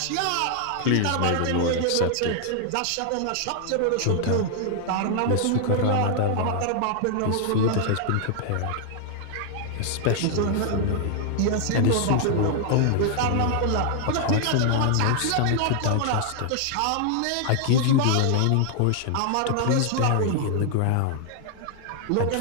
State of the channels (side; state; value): both; different; correlation 0.00